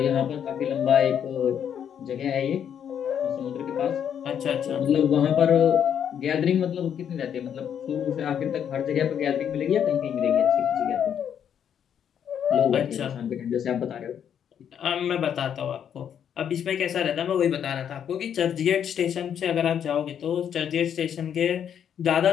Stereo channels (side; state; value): right; quieter; 8.7 dB